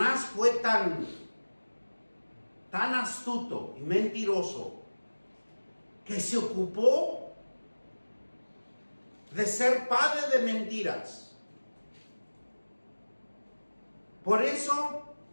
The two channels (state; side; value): inverted; both; correlation -1.00